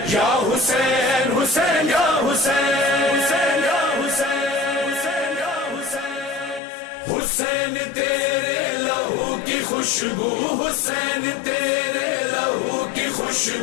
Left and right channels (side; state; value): right; drops out; at 6.6 s